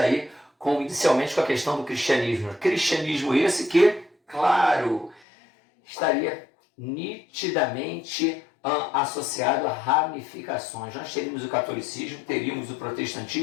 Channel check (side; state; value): right; drops out; at 5.2 s